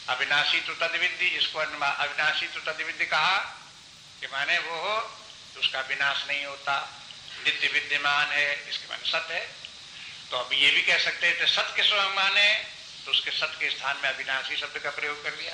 अविनाशी तो तद्विद्धि, जिसको अविनाशी तो तद्विद्धि कहा कि माने वो हो तो उसका विनाश नहीं होता, नित्य विद्यमान है, इसके माने सत्य है। तो अब ये भी कह सकते हैं सत्य के स्वयं माने, तो उसके सत्य के स्थान में अविनाशी शब्द का प्रयोग कर लिया।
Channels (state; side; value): identical; both; correlation 1.00